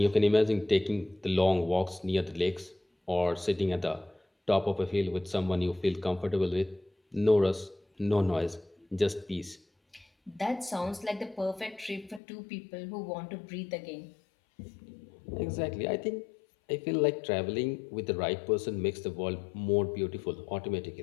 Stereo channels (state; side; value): drops out; right; at 12.2 s